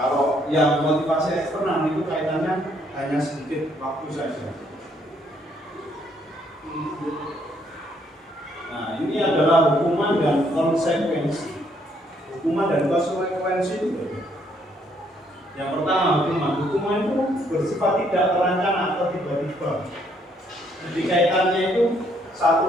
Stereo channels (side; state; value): both; normal; correlation 0.69